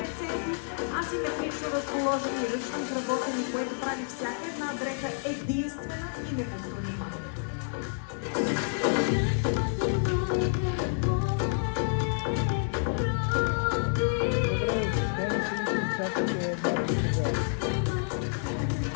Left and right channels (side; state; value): right; silent; digital silence